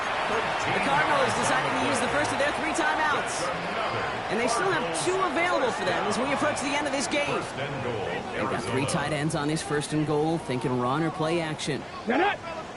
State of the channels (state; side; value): identical; both; correlation 1.00